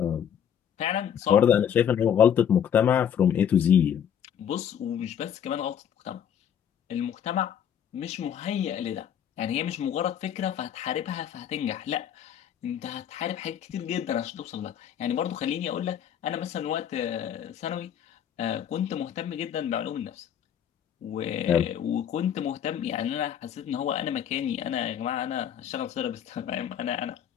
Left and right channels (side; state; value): right; quieter; 9.0 dB